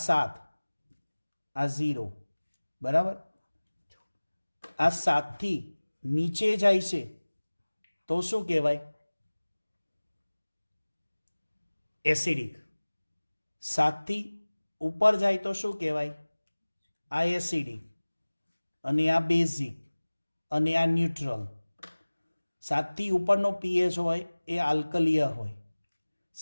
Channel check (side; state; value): both; inverted; correlation -1.00